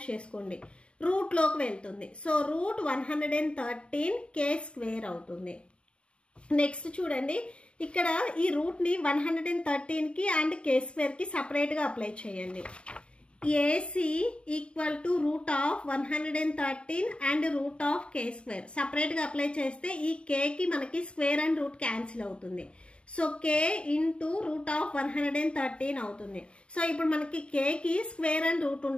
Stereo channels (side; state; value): right; late; 0.056 ms